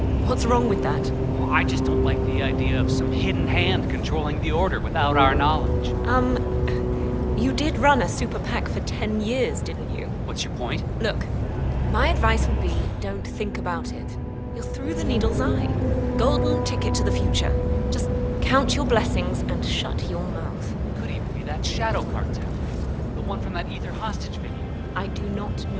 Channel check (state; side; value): identical; both; correlation 1.00